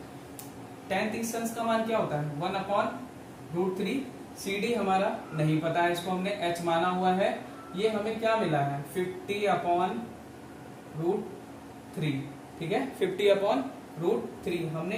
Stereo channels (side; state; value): both; identical; correlation 1.00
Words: tan 30 अंश का मान क्या होता है, 1/√3। CD हमारा नहीं पता है, इसको हमने h माना हुआ है। ये हमें क्या मिला है, 50/√3। ठीक है, 50/√3।